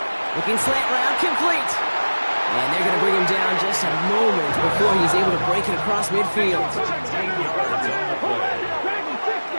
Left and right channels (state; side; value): inverted; both; correlation -1.00